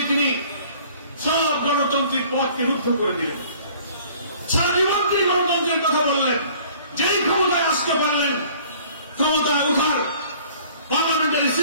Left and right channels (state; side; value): inverted; both; correlation -0.53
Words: তিনি সব গণতান্ত্রিক পথকে রুদ্ধ করে দিলেন। সারা জীবন তিনি গণতন্ত্রের কথা বললেন, যেই ক্ষমতায় আসতে পারলেন ক্ষমতায় উঠার পার্লামেন্টারি